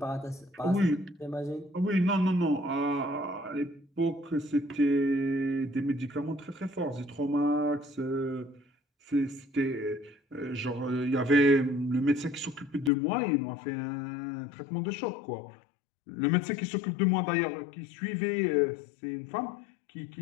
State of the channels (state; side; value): drops out; right; at 12.9 s